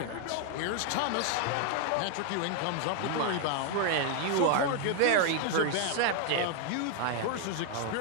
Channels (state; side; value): different; both; correlation 0.00